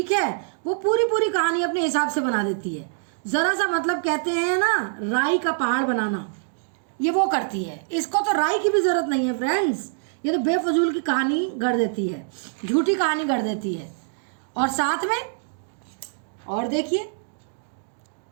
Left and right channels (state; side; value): silent; left; digital silence